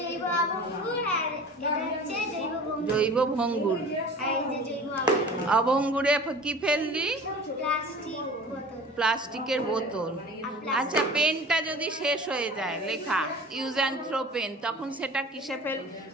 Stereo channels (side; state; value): both; normal; correlation 0.41